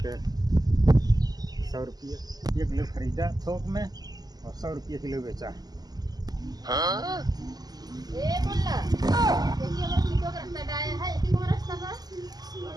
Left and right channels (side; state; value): left; late; 0.19 ms